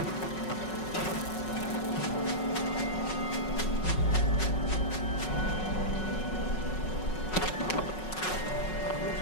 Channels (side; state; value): right; late; 5.4 ms